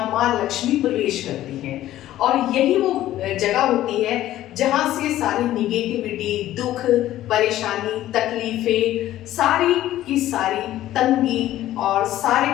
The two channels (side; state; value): right; quieter; 13.9 dB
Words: माँ लक्ष्मी प्रवेश करती हैं। और यही वो जगह होती है जहां से सारी निगेटिविटी, दुख, परेशानी, तकलीफें, सारी की सारी तंगी और सारी